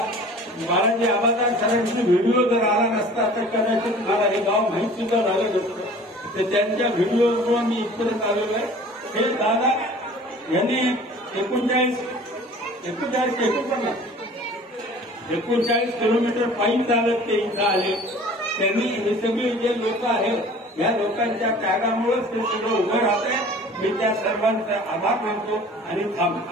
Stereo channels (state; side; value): normal; both; correlation 0.46